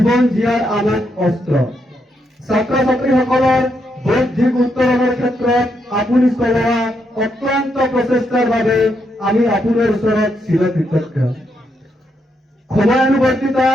জীয়াৰ আমাক অস্ত্ৰ। ছাত্ৰ ছাত্ৰীসকলৰ বৌদ্ধিক উত্তৰণৰ ক্ষেত্ৰত আপুনি চলোৱা অক্লান্ত প্ৰচেষ্টাৰ বাবে আমি আপোনাৰ ওচৰত চিৰকৃতজ্ঞ। সময়ানুবৰ্তিতা,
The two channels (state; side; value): normal; both; correlation 0.79